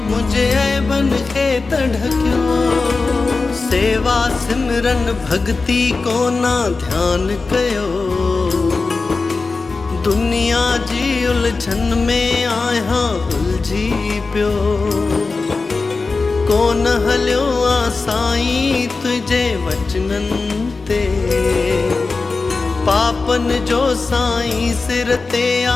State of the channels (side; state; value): right; quieter; 4.0 dB